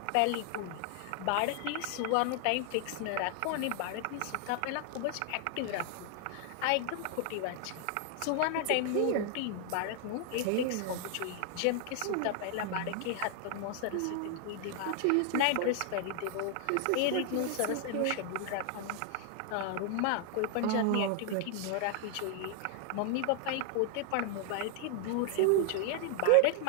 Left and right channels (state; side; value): different; both; correlation 0.00